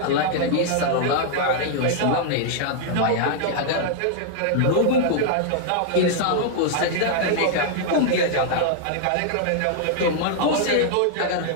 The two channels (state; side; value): different; both; correlation -0.01